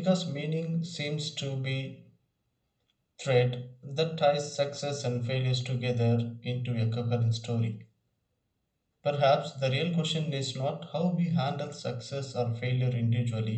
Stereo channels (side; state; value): both; identical; correlation 1.00